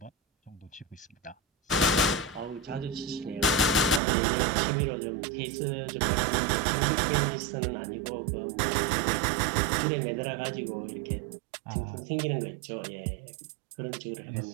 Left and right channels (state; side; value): drops out; left; at 4.0 s